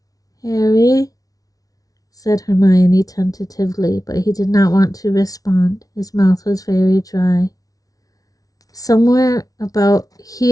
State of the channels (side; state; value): right; late; 0.18 ms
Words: "Harry?" said Hermione tentatively, but he did not want to respond. His mouth was very dry. "Somewhere about